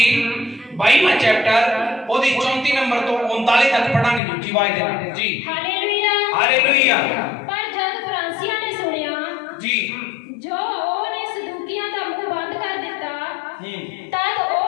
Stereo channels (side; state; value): right; drops out; at 4.2 s